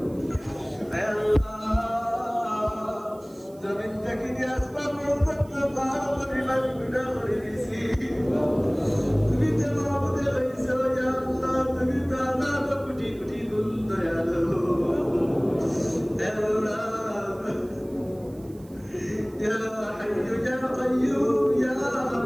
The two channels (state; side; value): noise; right; hiss, 27 dB below the sound